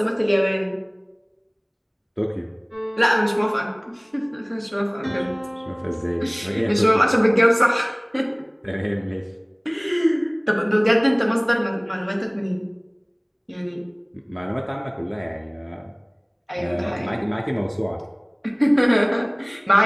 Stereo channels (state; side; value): identical; both; correlation 1.00